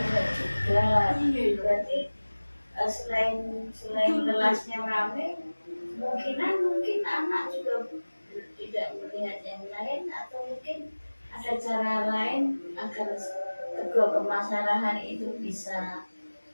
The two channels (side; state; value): both; inverted; correlation -1.00